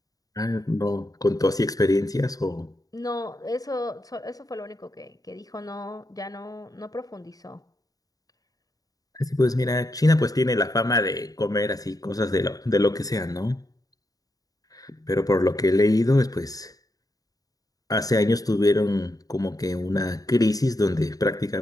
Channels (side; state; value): right; late; 0.18 ms